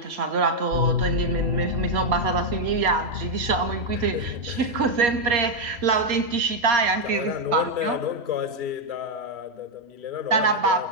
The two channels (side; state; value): left; late; 3.1 ms